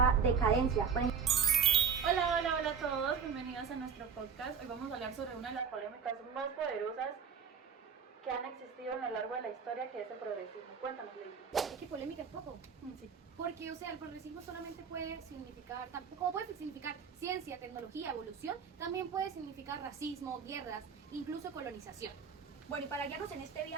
decadencia. Hola, hola, hola a todos, bienvenidos a nuestro podcast. Hoy vamos a hablar sobre una de las polémicas más poderosas que han existido a lo largo de la historia, que es el progresismo. Cuéntanos, Lady. Es que polémica es poco. Sí. Porque, o sea, el progresismo solamente puede significar, como puede significar ciencia, tecnología, evolución, también puede significar racismo, guerras, incluso colonización. Bueno, y para guiarnos en este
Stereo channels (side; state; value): left; quieter; 6.6 dB